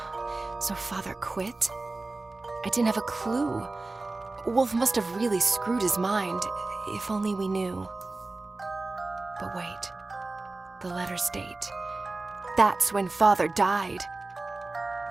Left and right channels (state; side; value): quieter; left; 3.3 dB